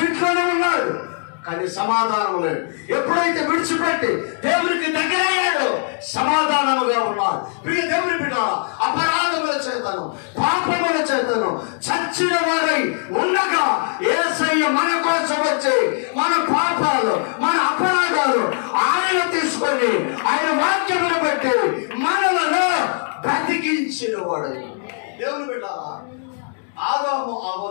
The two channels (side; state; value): right; silent; 61 dB below the other